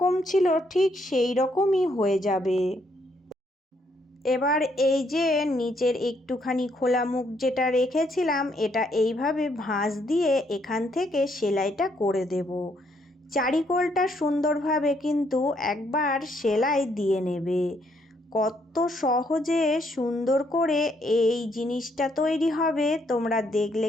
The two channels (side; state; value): both; normal; correlation 0.72